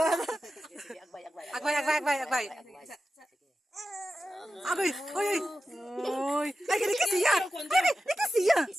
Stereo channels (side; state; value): both; normal; correlation 0.92